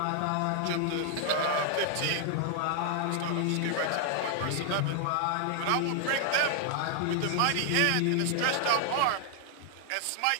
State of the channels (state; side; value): different; both; correlation 0.00